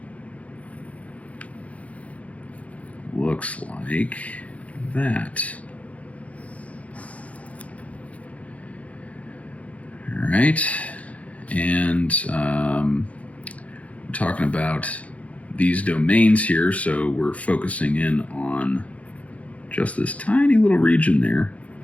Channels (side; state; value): right; late; 0.066 ms